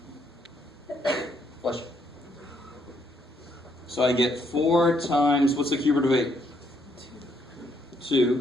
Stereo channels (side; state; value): both; normal; correlation 0.72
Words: Bless you. So I get 4 times, what's the cube root of 8?